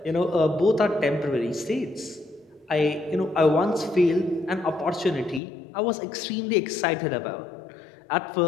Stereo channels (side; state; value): right; drops out; at 5.4 s